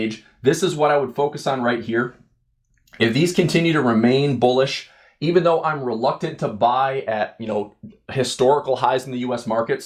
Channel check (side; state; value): both; identical; correlation 1.00